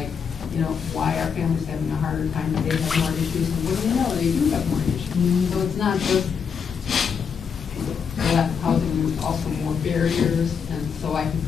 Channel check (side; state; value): right; quieter; 6.6 dB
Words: why are families having a harder time, they have more issues, and what do you know, they do have more issues. So it's not just lack of housing, there's also more barriers, and so I can